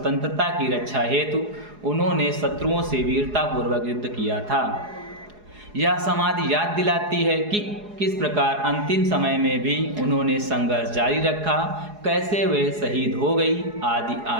की रक्षा हेतु उन्होंने शत्रुओं से वीरतापूर्वक युद्ध किया था। यह समाधि याद दिलाती है कि किस प्रकार अंतिम समय में भी उन्होंने संघर्ष जारी रखा, कैसे वे शहीद हो गई, आदि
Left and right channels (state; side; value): late; left; 4.8 ms